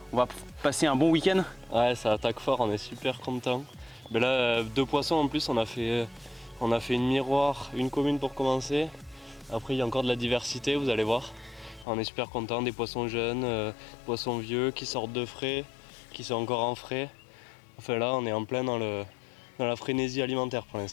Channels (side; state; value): right; drops out; at 11.9 s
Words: va passer un bon week-end. Ouais, ça attaque fort, on est super content. Mais là, 2 poissons en plus, on a fait une miroir, une commune pour commencer. Après, il y a encore de la diversité, vous allez voir. On est super content, des poissons jeunes, poissons vieux qui sortent de frais, qui sont encore en frais. Enfin là, on est en plein dans la frénésie alimentaire pour